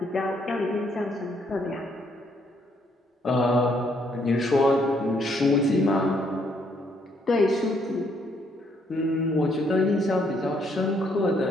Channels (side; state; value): both; normal; correlation 0.70